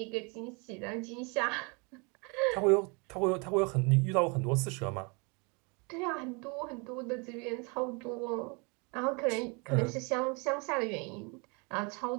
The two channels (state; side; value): quieter; left; 31.5 dB